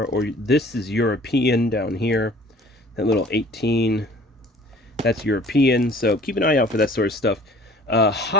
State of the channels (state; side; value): normal; both; correlation 0.50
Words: or this is European down here, that little 18, that's European. So keep an eye out for that sort of stuff.